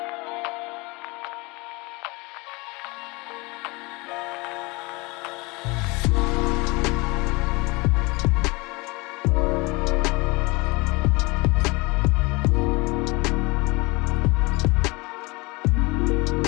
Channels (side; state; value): right; quieter; 25.7 dB